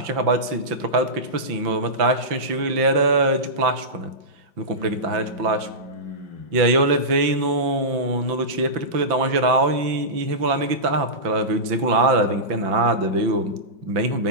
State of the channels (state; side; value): late; left; 5.9 ms